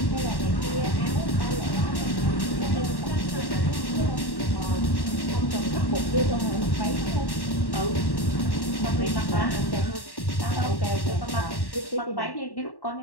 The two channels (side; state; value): right; late; 1.1 ms